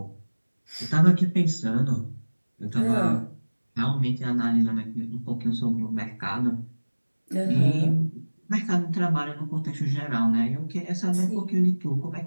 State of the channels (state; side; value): inverted; both; correlation -1.00